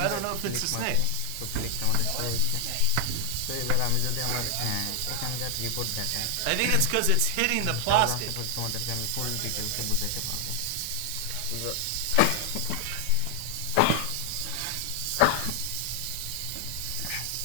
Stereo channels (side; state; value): both; different; correlation 0.00